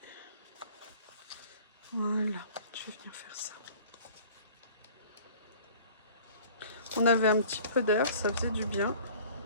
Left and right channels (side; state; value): both; inverted; correlation -0.48